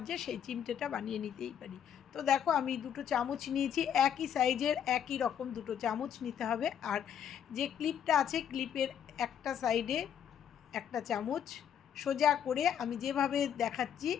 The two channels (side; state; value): right; quieter; 8.9 dB